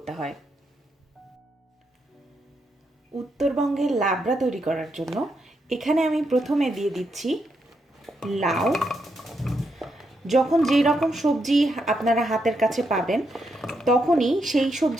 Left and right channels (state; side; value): normal; both; correlation 0.81